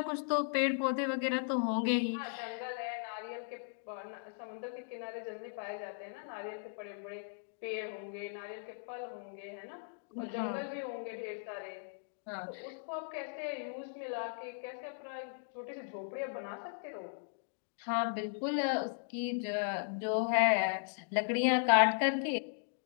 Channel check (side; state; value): right; silent; digital silence